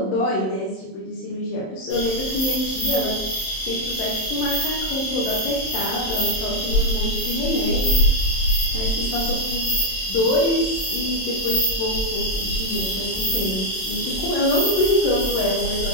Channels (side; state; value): right; late; 27 ms